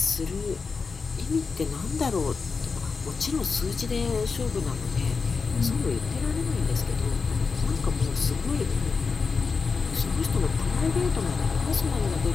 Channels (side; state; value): right; quieter; 4.8 dB